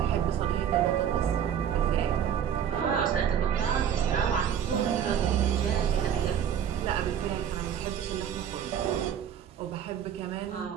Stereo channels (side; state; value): left; quieter; 9.1 dB